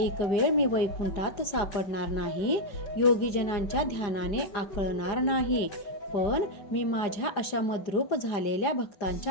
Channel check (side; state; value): right; late; 5.0 ms